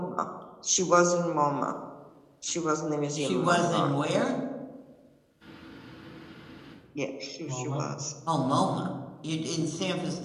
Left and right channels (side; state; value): both; identical; correlation 1.00